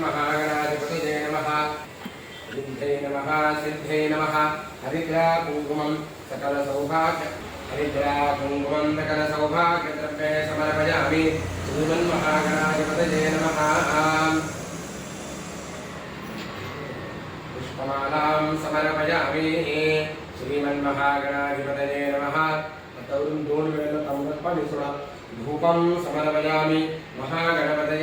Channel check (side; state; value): both; identical; correlation 1.00